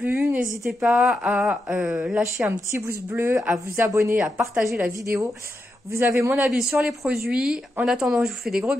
N'hésitez pas à lâcher un petit pouce bleu, à vous abonner, à partager la vidéo. Vous avez mon avis sur les produits. En attendant, je vous fais des gros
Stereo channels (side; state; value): both; normal; correlation 0.86